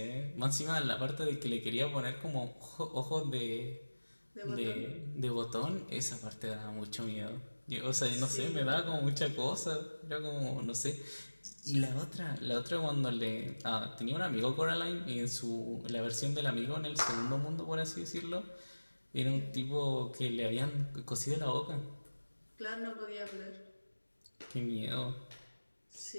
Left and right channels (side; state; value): both; inverted; correlation -1.00